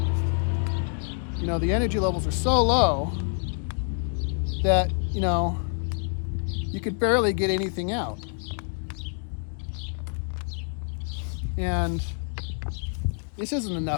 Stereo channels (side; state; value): right; silent; 56 dB below the other